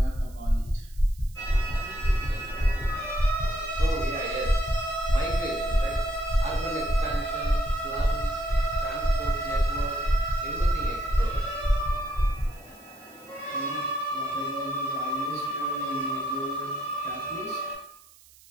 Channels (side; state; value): right; noise; hiss, 25 dB below the sound